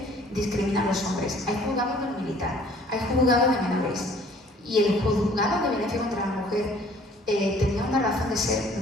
discrimina a los hombres. Hay juzgados del militar, hay juzgados de menores, y el juzgado de violencia contra la mujer tenía una razón de ser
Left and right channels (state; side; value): normal; both; correlation 0.55